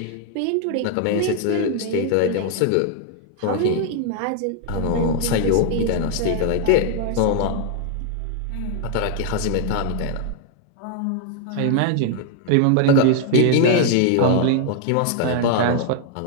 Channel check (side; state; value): both; different; correlation 0.00